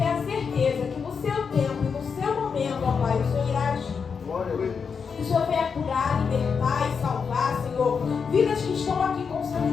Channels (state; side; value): quieter; right; 5.9 dB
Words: a certeza que no seu tempo e no seu momento, ó Pai, o Senhor irá agir. Que o Senhor venha curar, libertar e salvar, Senhor, vidas que estão aqui com seus